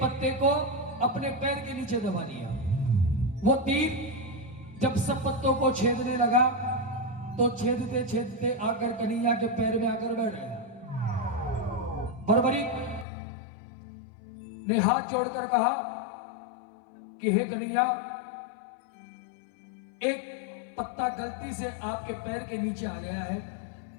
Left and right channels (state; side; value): drops out; right; at 13.1 s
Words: पत्ते को अपने पैर के नीचे दबा लिया। वो तीर जब सब पत्तों को छेदने लगा तो छेदते छेदते आकर कन्हैया के पैर में आकर बैठ गया। बर्बरीक ने हाथ जोड़कर कहा कि हे कन्हैया, एक पत्ता गलती से आपके पैर के नीचे आ गया है,